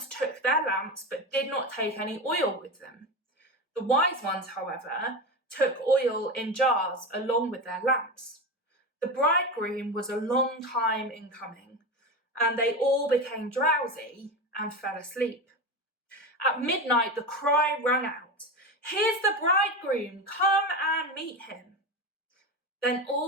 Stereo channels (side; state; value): both; normal; correlation 0.21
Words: took their lamps but did not take any oil with them. The wise ones, however, took oil in jars along with their lamps. The bridegroom was a long time in coming, and they all became drowsy and fell asleep. At midnight, the cry rang out, "Here's the bridegroom, come and meet him." Then